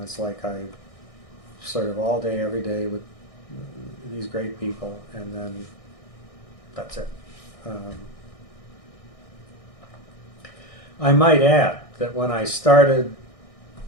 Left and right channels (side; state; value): right; late; 1.6 ms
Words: it's like I sort of all day, every day with these great people, and then that's it. I might add that when I started